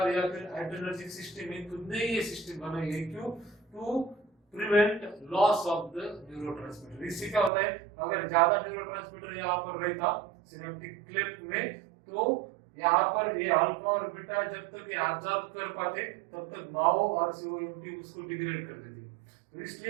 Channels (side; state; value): left; drops out; at 7.5 s